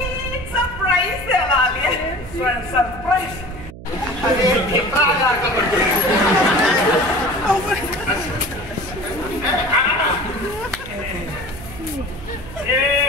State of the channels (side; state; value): right; noise; hum, 15 dB below the sound